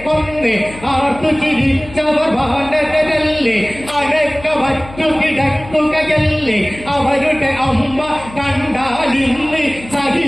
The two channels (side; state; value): left; noise; hum, 17 dB below the sound